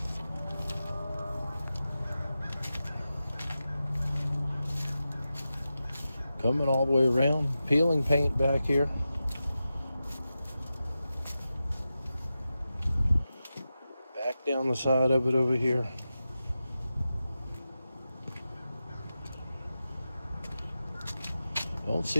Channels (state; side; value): inverted; both; correlation -0.92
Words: Coming all the way around, peeling paint back here. Back down the side of it over here. Don't